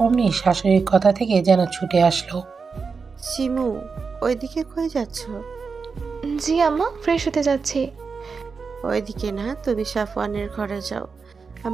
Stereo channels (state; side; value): quieter; left; 5.1 dB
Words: অমনি শাশুড়ির কথা থেকে যেন ছুটে আসলো। শিমু, ওইদিকে কই যাচ্ছ? জি আম্মা, ফ্রেশ হতে যাচ্ছি। ওইদিকে না, তুমি সাফওয়ানের ঘরে যাও।